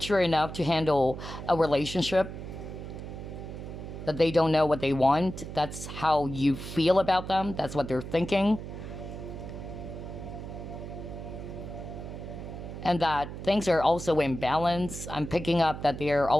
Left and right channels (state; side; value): noise; right; hum, 9 dB below the sound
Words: enough to handle a relationship, that they don't know what they want. That's how you feel about them. That's what they're thinking. And that things are also in balance. I'm picking up that they're